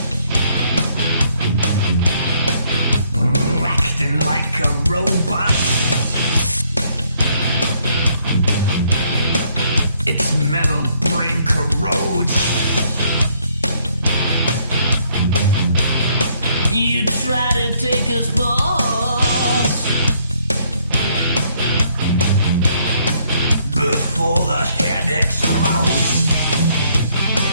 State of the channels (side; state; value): both; inverted; correlation -0.68